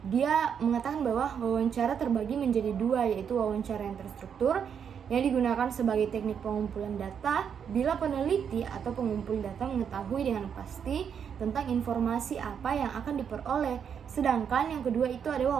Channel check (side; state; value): left; quieter; 7.6 dB